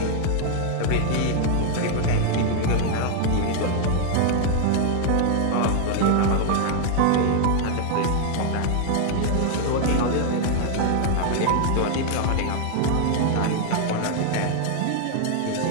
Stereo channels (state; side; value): different; both; correlation 0.00